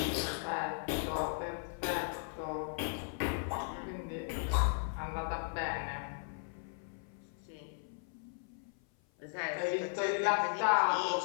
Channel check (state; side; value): silent; right; 53 dB below the other